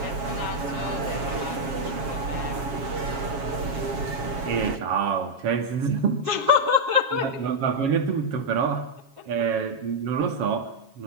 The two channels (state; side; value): late; left; 7.3 ms